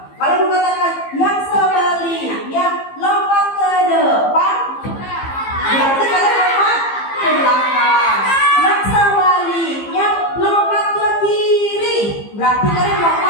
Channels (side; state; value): right; late; 15 ms